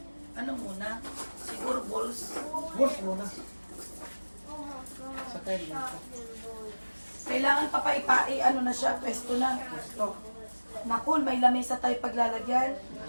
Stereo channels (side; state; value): both; inverted; correlation -1.00